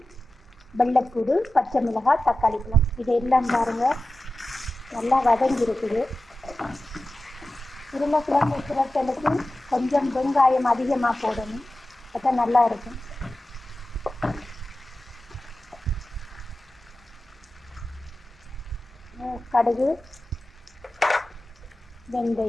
வெள்ளைப்பூடு, பச்சை மிளகாய், தக்காளி பழம் இதெல்லாம் பாருங்க நல்லா வதங்கி இருக்குது. உருளைக்கிழங்கு புரட்டலுக்கு கொஞ்சம் வெங்காயம் அதிகமாக போடணும், அப்போ நல்லா இருக்கும். கடுகு,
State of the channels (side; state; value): both; normal; correlation 0.94